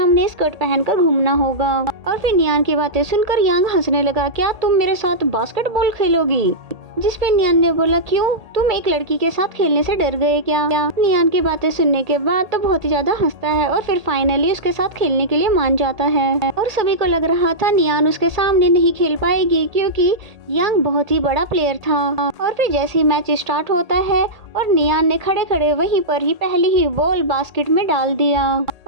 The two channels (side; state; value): left; late; 1.8 ms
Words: स्कर्ट पहनकर घूमना होगा। और फिर नियान की बातें सुनकर यांग हंसने लगा, क्या तुम मेरे साथ बास्केटबॉल खेलोगी? जिस पे नियान ने बोला क्यों, तुम एक लड़की के साथ खेलने से डर गए क्या? नियान की बातें सुनने के बाद तो बहुत ही ज्यादा हंसता है और फिर फाइनली उसके साथ खेलने के लिए मान जाता है। और सभी को लग रहा था नियान उसके सामने नहीं खेल पाएगी क्योंकि यांग बहुत ही बड़ा प्लेयर था। और फिर जैसे ही मैच स्टार्ट होता है और नियान ने खड़े खड़े वहीं पर ही पहली ही बॉल बास्केट में डाल दिया।